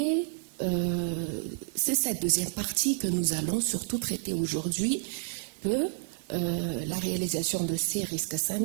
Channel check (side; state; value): left; silent; digital silence